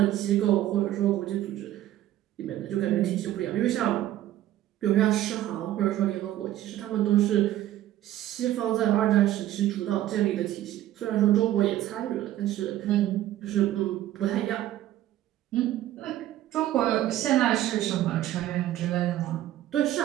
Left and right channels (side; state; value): left; quieter; 13.5 dB